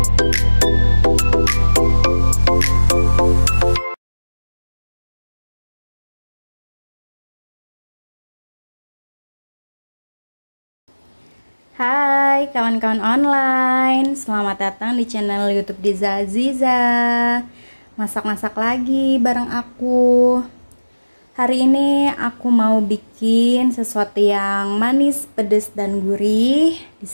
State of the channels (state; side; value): inverted; both; correlation -1.00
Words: kawan-kawan online, selamat datang di channel YouTube Diza Aziza. Masak-masak lagi bareng aku. Hari ini aku mau bikin sesuatu yang manis, pedas dan gurih. Di